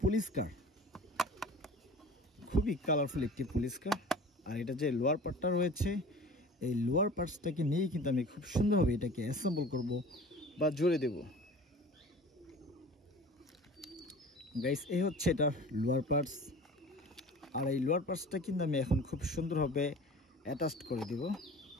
পুলিশ কার, খুবই কালারফুল একটি পুলিশ কার। আর এটা যে লোয়ার পার্টটা রয়েছে, এই লোয়ার পার্টসটাকে নিয়েই কিন্তু আমি খুব সুন্দরভাবে এটাকে অ্যাসেম্বল করব বা জোড়ে দেব। গাইস এই হচ্ছে এটা লোয়ার পার্টস। আর এই লোয়ার পার্টসটা কিন্তু আমি এখন খুব সুন্দরভাবে অ্যাটাচড করে দেব।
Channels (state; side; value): normal; both; correlation 0.41